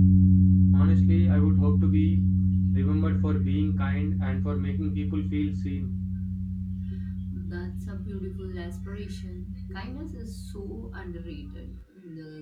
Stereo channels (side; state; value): both; identical; correlation 1.00